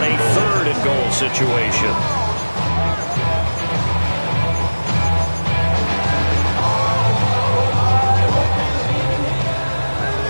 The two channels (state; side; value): inverted; both; correlation -1.00